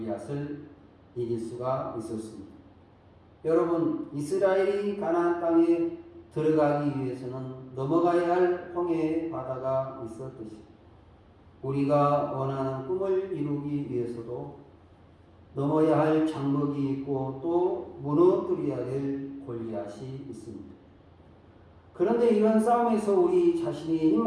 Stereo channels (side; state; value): both; identical; correlation 1.00